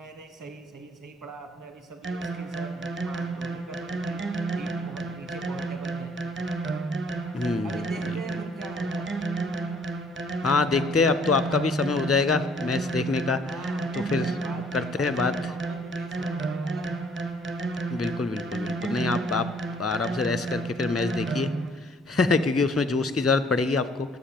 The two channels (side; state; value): both; normal; correlation 0.61